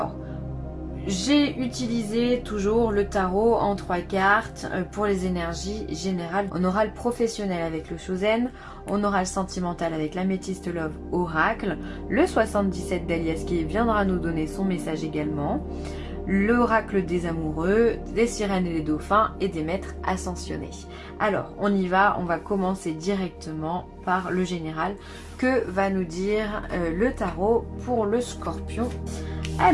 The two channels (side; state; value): both; identical; correlation 1.00